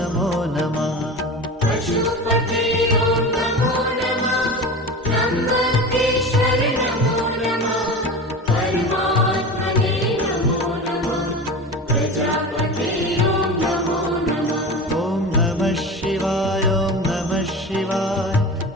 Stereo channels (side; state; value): both; normal; correlation 0.30